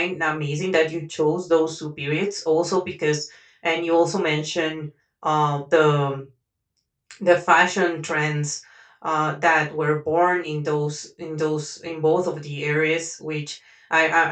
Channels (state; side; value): identical; both; correlation 1.00